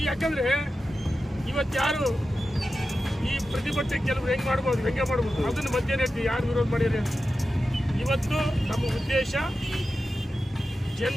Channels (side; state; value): both; normal; correlation 0.92